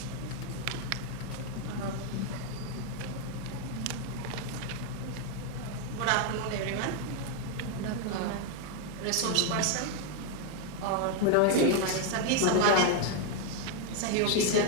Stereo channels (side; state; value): both; different; correlation 0.01